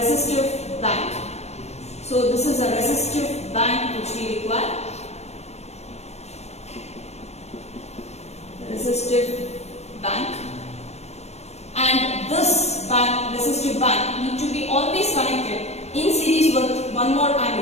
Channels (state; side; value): late; right; 0.31 ms